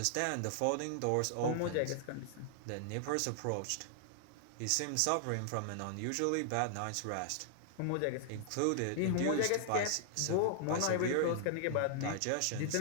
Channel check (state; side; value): different; both; correlation -0.01